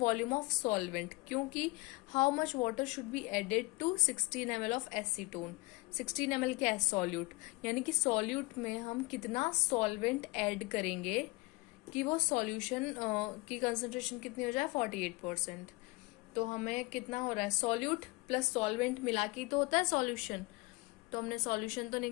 ऑफ सॉल्वेंट, क्योंकि how much water should be added to 16 ml of acetone. 16 ml क्या है? सॉल्यूट, यानी कि सॉल्यूट में हम कितना सॉल्वेंट ऐड करेंगे कि वो सॉल्यूशन की कंसंट्रेशन कितनी हो जाए? 48%। तो हमें कितना हो रहा है? सॉल्यूट प्लस सॉल्वेंट मिला के तो होता है सॉल्यूशन। तो हमने सॉल्यूशन तो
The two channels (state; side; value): quieter; right; 24.3 dB